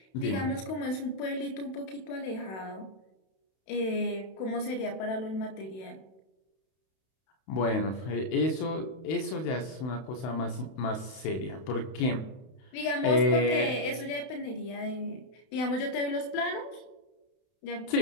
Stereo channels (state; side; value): late; right; 31 ms